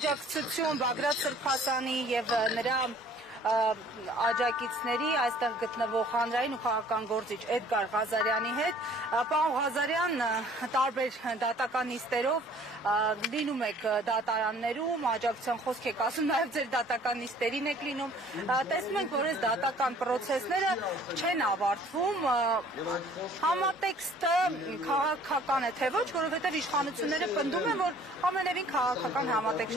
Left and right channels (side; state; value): both; normal; correlation 0.54